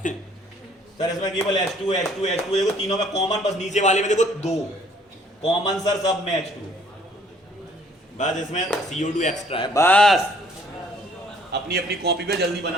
सर, इसमें केवल H2 देखो, तीनों में कॉमन, बस नीचे वाले में देखो 2 कॉमन सर, सब में H2, बस इसमें CO2 एक्स्ट्रा है। बस अपनी अपनी कॉपी पे जल्दी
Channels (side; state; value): both; normal; correlation 0.60